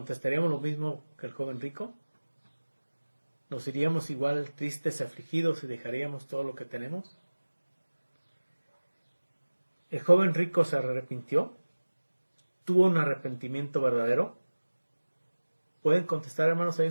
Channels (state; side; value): inverted; both; correlation -1.00